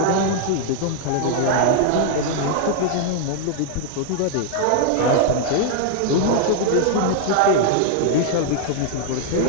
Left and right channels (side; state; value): both; different; correlation 0.00